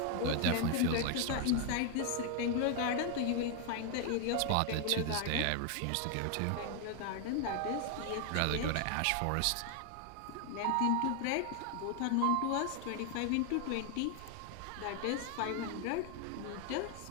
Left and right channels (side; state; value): both; different; correlation 0.00